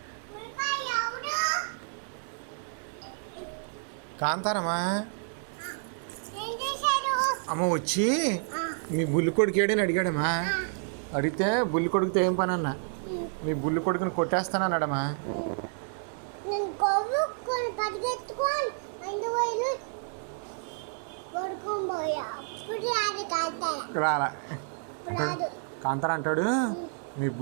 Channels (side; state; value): left; silent; digital silence